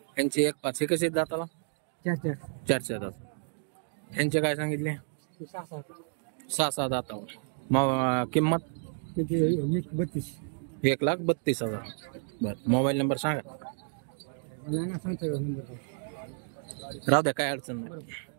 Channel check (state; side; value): silent; left; digital silence